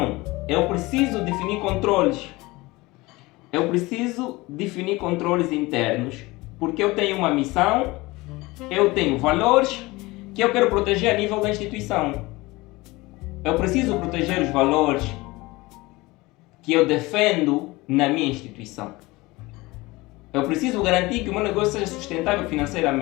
eu preciso definir controles. Eu preciso definir controles internos, porque eu tenho uma missão, eu tenho valores que eu quero proteger a nível da instituição. Eu preciso proteger os valores que eu defendo na minha instituição. Eu preciso garantir que o meu negócio seja sustentável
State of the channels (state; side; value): quieter; right; 21.7 dB